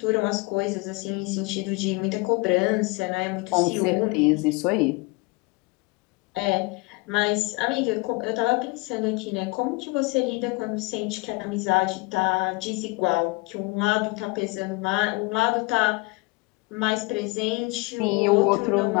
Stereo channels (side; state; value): right; quieter; 25.7 dB